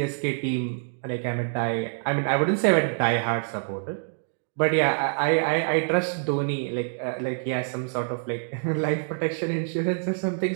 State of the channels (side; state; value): left; silent; digital silence